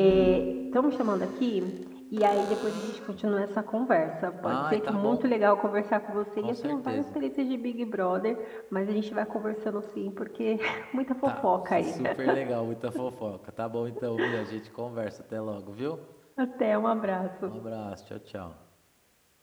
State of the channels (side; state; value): both; identical; correlation 1.00